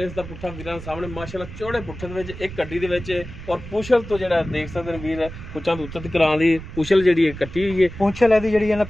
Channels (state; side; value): noise; right; rumble, 12 dB below the sound